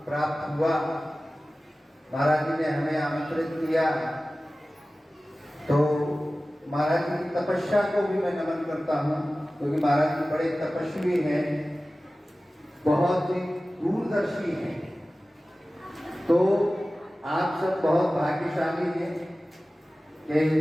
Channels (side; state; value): both; normal; correlation 0.96